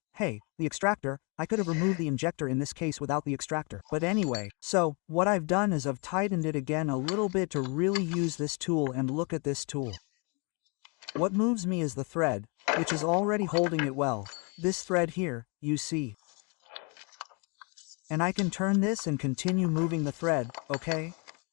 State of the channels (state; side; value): quieter; right; 33.5 dB